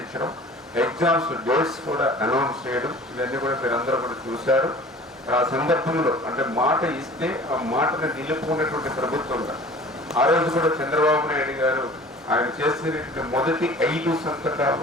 ఎగ్జామ్స్ డేట్స్ కూడా అనౌన్స్ చేయడం, ఇవన్నీ కూడా మీరందరూ కూడా చూశారు. ఆ సందర్భంలో అంటే మాట ఇస్తే ఆ మాటను నిలుపుకున్నటువంటి ప్రభుత్వంగా ఆ రోజు కూడా చంద్రబాబు నాయుడు గారు ఆయన చేసినటువంటి మొదటి 5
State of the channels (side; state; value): both; normal; correlation 0.44